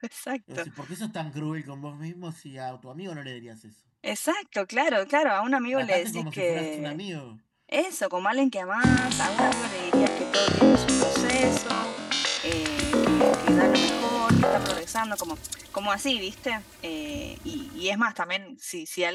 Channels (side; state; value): both; identical; correlation 1.00